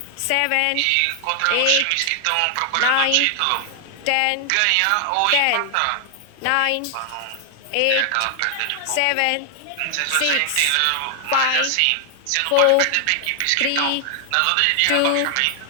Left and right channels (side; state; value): both; different; correlation 0.00